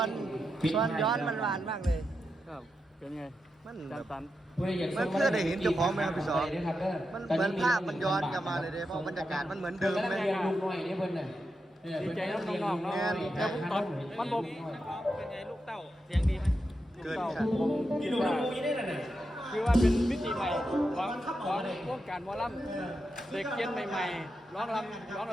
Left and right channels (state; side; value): normal; both; correlation 0.87